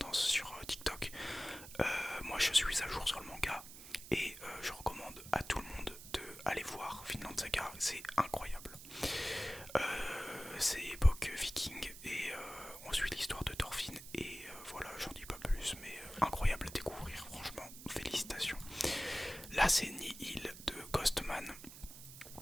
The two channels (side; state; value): right; noise; hiss, 14 dB below the sound